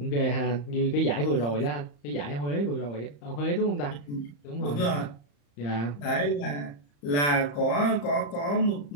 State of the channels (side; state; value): right; late; 35 ms